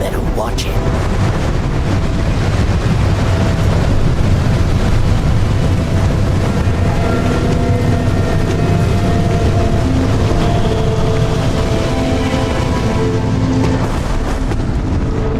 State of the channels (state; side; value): identical; both; correlation 1.00